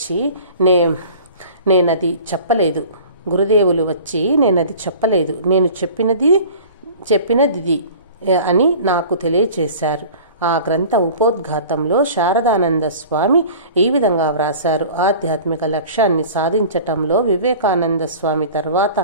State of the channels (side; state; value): both; inverted; correlation -0.42